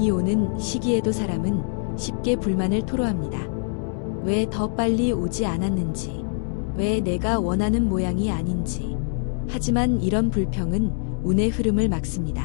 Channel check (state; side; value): silent; right; 63 dB below the other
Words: 오는 시기에도 사람은 쉽게 불만을 토로합니다. 왜 더 빨리 오지 않았는지, 왜 내가 원하는 모양이 아닌지. 하지만 이런 불평은 운의 흐름을